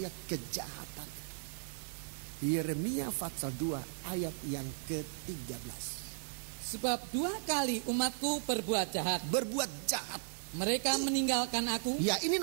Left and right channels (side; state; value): left; silent; digital silence